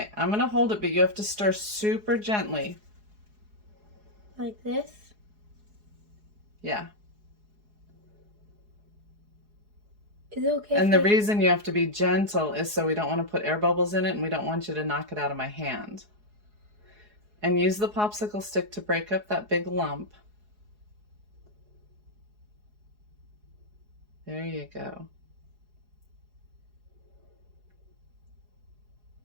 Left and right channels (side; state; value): left; late; 4.8 ms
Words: I'm going to hold it, but you have to stir super gently. Like this? Yeah. Is it okay? And the reason you have to be gentle is so we don't want to put air bubbles in it and we don't want you to knock it out of my hand. And use the popsicle stick to break up that big lump. There you go.